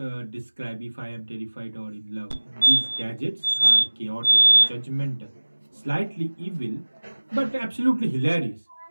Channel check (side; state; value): both; inverted; correlation -1.00